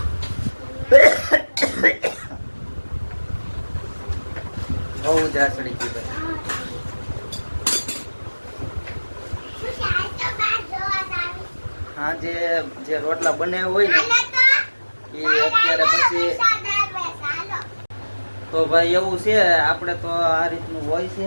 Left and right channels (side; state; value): both; inverted; correlation -1.00